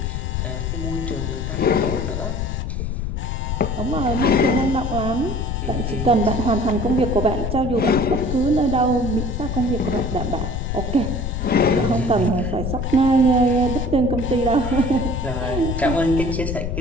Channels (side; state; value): left; noise; rumble, 3 dB below the sound